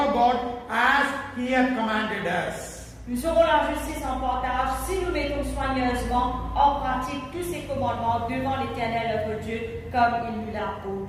God as He hath commanded us. Nous aurons la justice en partage si nous mettons soigneusement en pratique tous ces commandements devant l'Éternel notre Dieu comme il nous l'a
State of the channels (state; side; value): identical; both; correlation 1.00